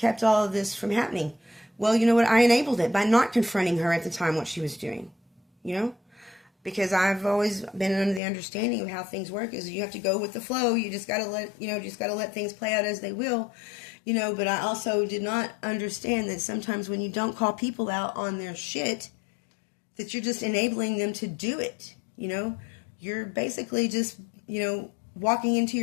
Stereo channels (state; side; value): drops out; right; at 8.2 s